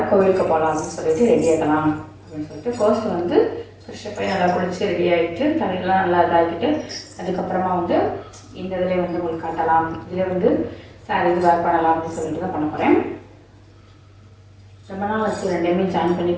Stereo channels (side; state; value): both; identical; correlation 1.00